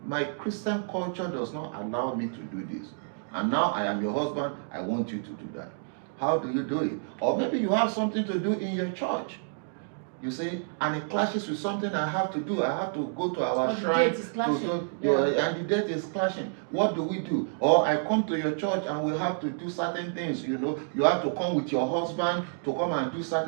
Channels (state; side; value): silent; left; digital silence